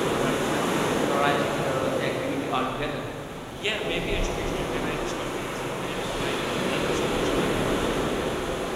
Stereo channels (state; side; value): identical; both; correlation 1.00